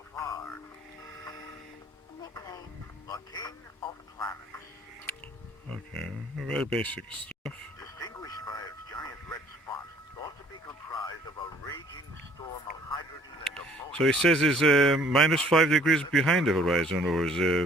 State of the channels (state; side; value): normal; both; correlation 0.57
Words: far. Nickname: the King of Planets. Okay, very basic stuff. Distinguished by its giant red spot, thought to be comprised of a raging storm of hydrogen and ammonia. So it says it's minus 5 degrees behind the horizon, or